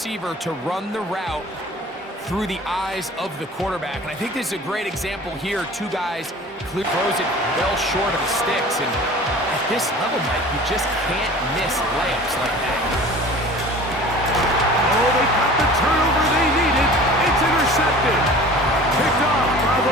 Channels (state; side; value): normal; both; correlation 0.43